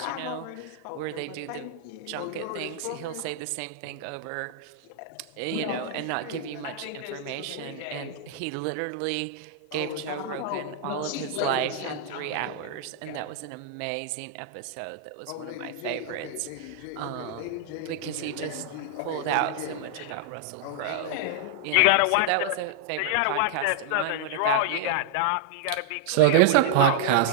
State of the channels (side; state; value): both; different; correlation -0.01